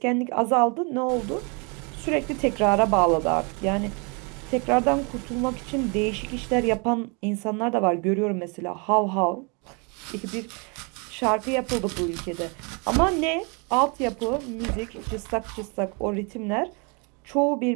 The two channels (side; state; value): left; quieter; 32.7 dB